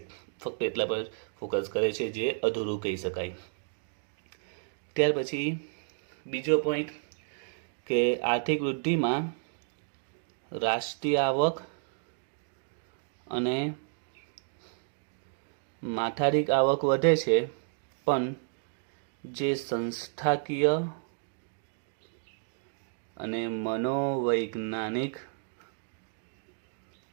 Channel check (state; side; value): silent; left; digital silence